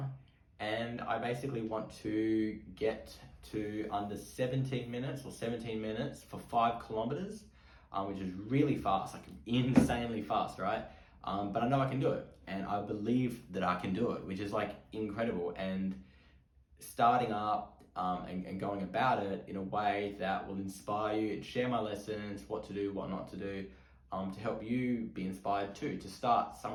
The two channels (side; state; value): both; identical; correlation 1.00